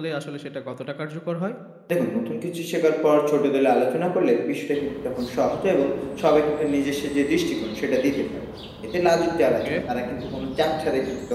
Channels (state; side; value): identical; both; correlation 1.00